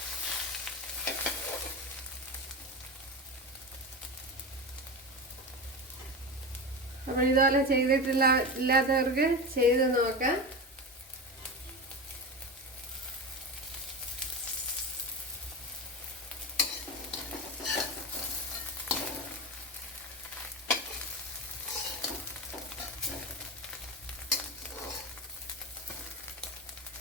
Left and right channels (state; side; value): normal; both; correlation 0.23